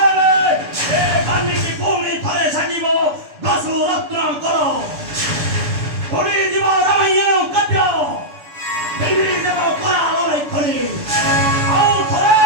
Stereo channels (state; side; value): late; left; 6.8 ms